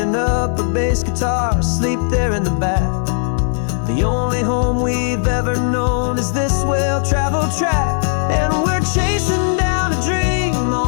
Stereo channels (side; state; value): right; silent; 67 dB below the other